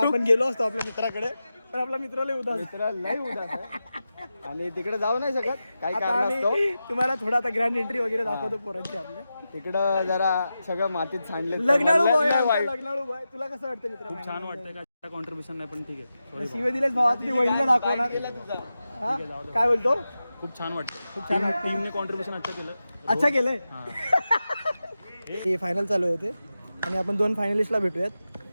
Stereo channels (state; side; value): inverted; both; correlation -0.92